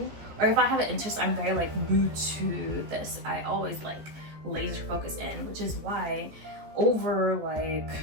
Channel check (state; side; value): late; left; 14 ms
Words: Or if I have an interest, I'm very like glued to this. I always like laser focus in, which is why over like